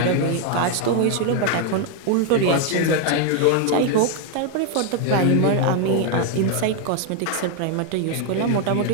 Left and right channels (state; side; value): different; both; correlation 0.00